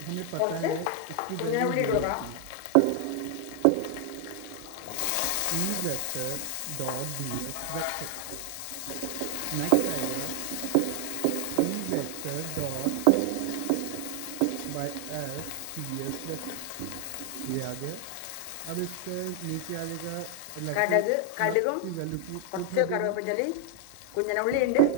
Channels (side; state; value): both; different; correlation 0.00